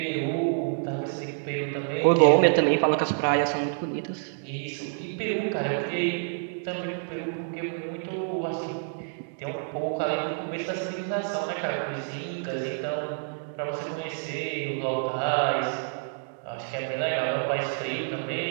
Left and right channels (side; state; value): left; silent; digital silence